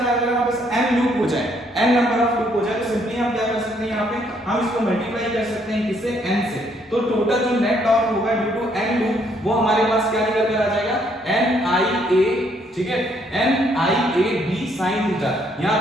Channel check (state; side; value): normal; both; correlation 0.69